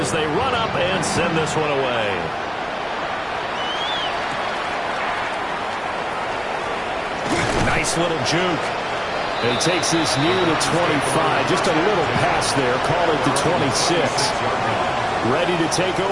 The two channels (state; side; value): identical; both; correlation 1.00